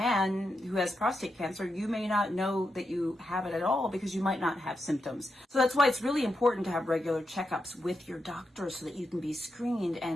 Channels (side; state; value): both; normal; correlation 0.86